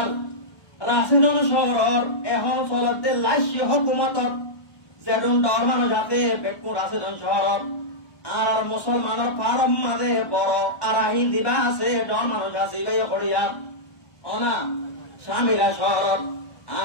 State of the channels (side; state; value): right; late; 1.1 ms